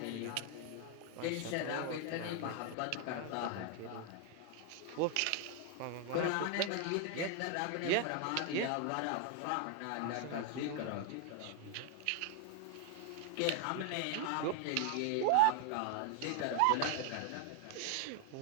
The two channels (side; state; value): both; different; correlation 0.00